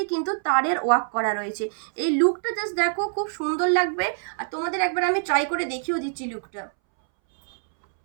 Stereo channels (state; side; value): silent; left; 62 dB below the other